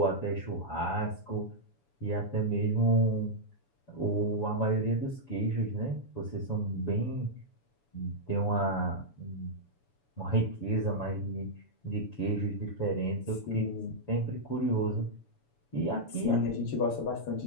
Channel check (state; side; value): late; right; 7.0 ms